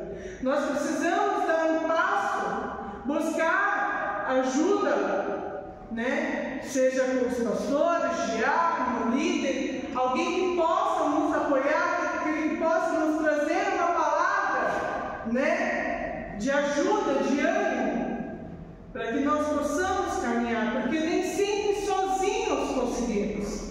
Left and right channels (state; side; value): identical; both; correlation 1.00